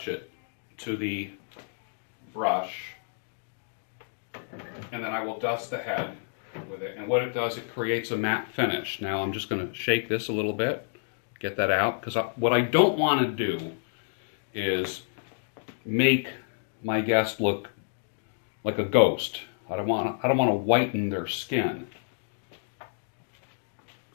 it to the brush, and then I will dust the head with it. And what it does, it creates a matte finish. Now I'm just going to shake this a little bit, get that out, because what I don't want to do is make my guest look like a ghost. I don't want to whiten their skin.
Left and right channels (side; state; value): right; silent; digital silence